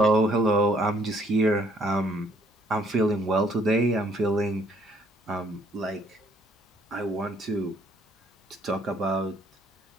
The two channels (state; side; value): normal; both; correlation 0.65